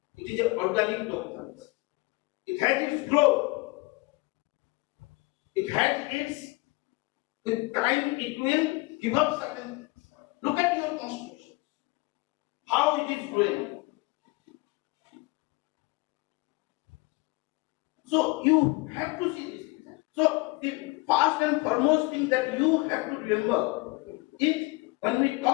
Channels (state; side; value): quieter; right; 25.1 dB